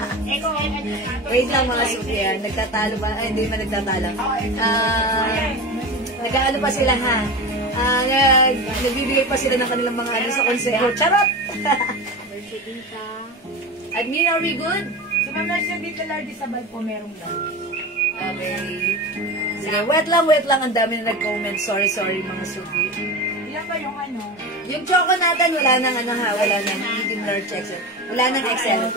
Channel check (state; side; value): normal; both; correlation 0.27